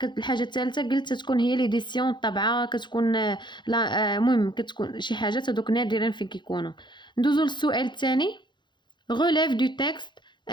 الحاجه الثالثه قلت تكون هي ليديسيون الطبعه، كتكون لا المهم كتكون شي حاجات هذوك نادرا فين كيكونوا. ندوزو للسؤال الثاني. relève du texte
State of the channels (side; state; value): right; late; 0.22 ms